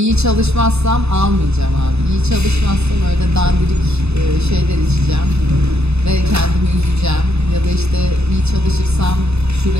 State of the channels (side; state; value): left; late; 0.80 ms